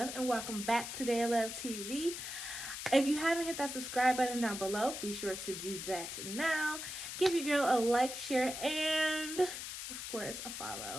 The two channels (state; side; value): noise; left; hiss, 7 dB below the sound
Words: and welcome back to Day of Love TV. If you haven't hit that subscribe button down below, be sure to do that now. Give your girl a like, share, and of course a